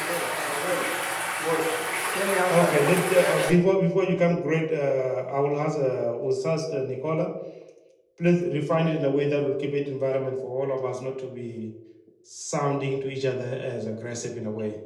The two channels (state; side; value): identical; both; correlation 1.00